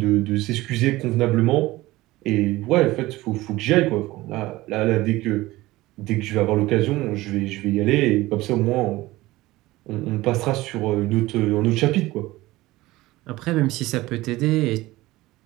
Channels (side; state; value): left; quieter; 18.6 dB